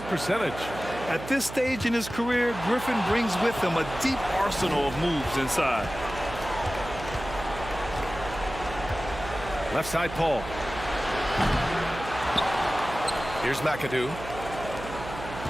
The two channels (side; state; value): right; noise; hum, 11 dB below the sound